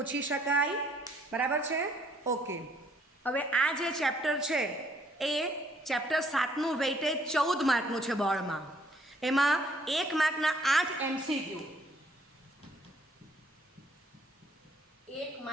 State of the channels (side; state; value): both; normal; correlation 0.65